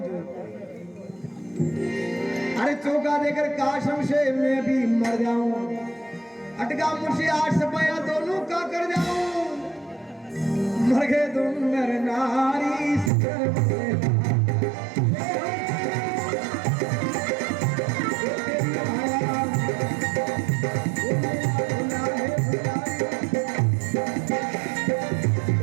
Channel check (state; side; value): drops out; left; at 13.1 s